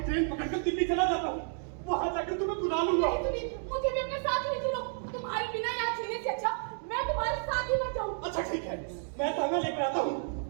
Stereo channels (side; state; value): left; silent; 57 dB below the other